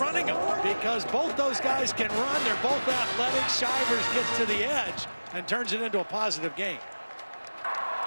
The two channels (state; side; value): inverted; both; correlation -1.00